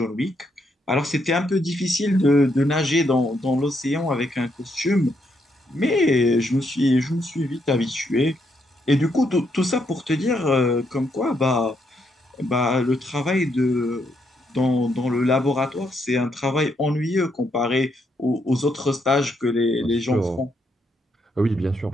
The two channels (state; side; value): normal; both; correlation 0.77